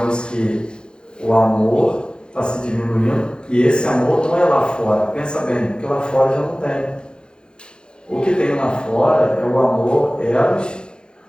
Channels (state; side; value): late; right; 0.049 ms